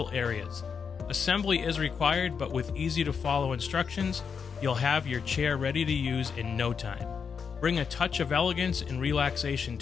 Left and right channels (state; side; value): quieter; right; 6.3 dB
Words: areas. Assembly is required, but with easy to follow instructions, you'll have your chair ready to use in no time. Bring a touch of elegance and relaxation